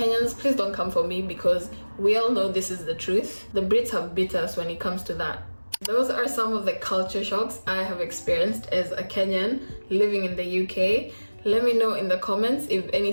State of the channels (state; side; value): inverted; both; correlation -1.00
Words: please don't come for me because we all know this is the truth. The Brits have beat us when it comes to that. Those are some of the culture shocks I have experienced as a Kenyan living in the UK. Let me know in the comments if